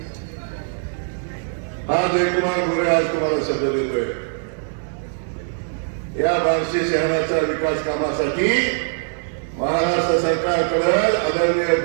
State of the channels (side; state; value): left; silent; 64 dB below the other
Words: हा जयकुमार गोरे आज तुम्हाला शब्द देतोय, या बार्शी शहराच्या विकास कामासाठी महाराष्ट्र सरकारकडे आदरणीय